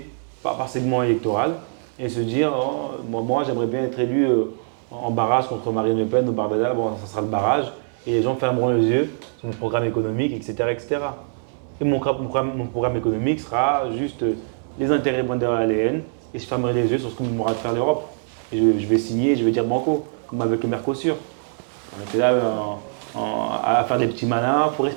par segment électoral et se dire oh, moi j'aimerais bien être élu en barrage contre Marine Le Pen au Barbada, bon ça sera le barrage et les gens fermeront les yeux sur mon programme économique, etc. etc. Et mon programme économique sera juste les intérêts von der Leyen et je fermerai les yeux sur ce que m'aura de faire l'Europe. Et je vais signer, je vais dire banco, comme avec le Mercosur. On était là à faire des petits malins, il faut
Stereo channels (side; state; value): left; silent; digital silence